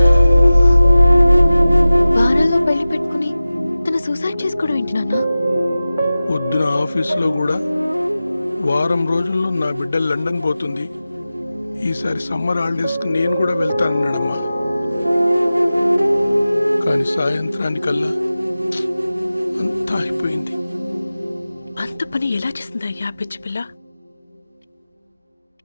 వారాల్లో పెళ్లి పెట్టుకుని తను సూసైడ్ చేసుకోవడం ఏంటి నాన్న? పొద్దున ఆఫీసులో కూడా వారం రోజుల్లో నా బిడ్డ లండన్ పోతుంది, ఈసారి సమ్మర్ హాలిడేస్కి నేను కూడా వెళ్తానన్నాడమ్మా. కానీ సాయంత్రానికల్లా అంతా అయిపోయింది. అంత పని ఎలా చేస్తుందయ్యా పిచ్చి పిల్ల?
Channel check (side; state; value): both; inverted; correlation -0.96